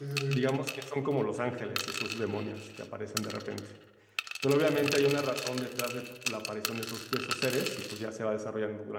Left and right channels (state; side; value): identical; both; correlation 1.00